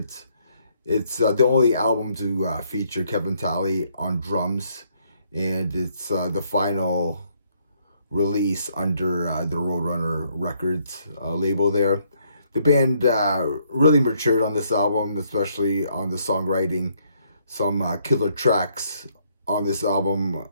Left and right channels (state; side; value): inverted; both; correlation -0.70